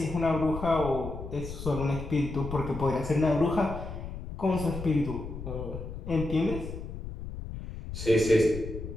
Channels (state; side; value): noise; left; rumble, 9 dB below the sound